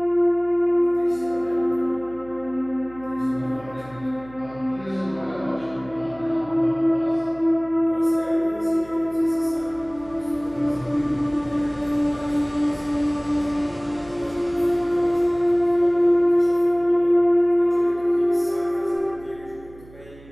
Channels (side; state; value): right; noise; hum, 22 dB below the sound